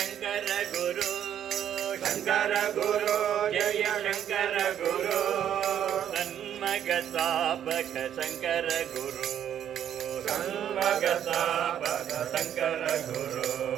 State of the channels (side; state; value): left; quieter; 9.9 dB